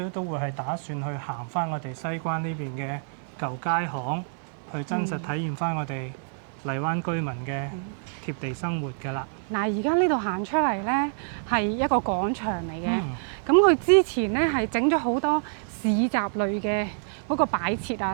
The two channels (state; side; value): silent; left; digital silence